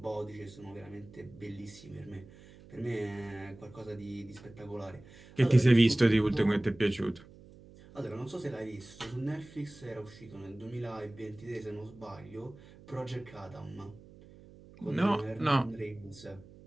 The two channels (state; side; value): noise; right; hum, 21 dB below the sound